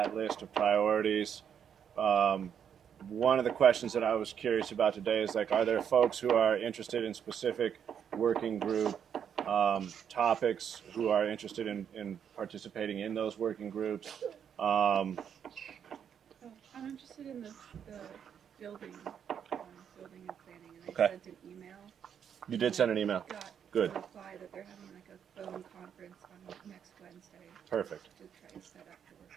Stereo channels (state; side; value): quieter; left; 8.2 dB